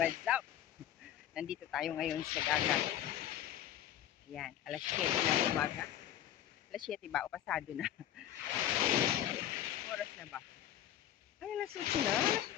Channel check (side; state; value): right; quieter; 11.6 dB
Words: up? Nandito tayo ngayon sa dagat. Yan, alas 7 ng umaga. Alas 7 ba o pasado na? Oras na ba? Ay, alas 8 na? Alas